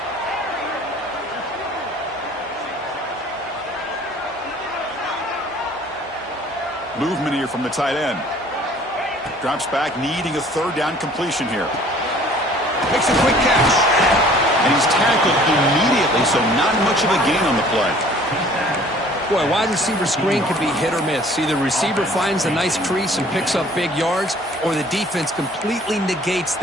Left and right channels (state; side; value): normal; both; correlation 0.53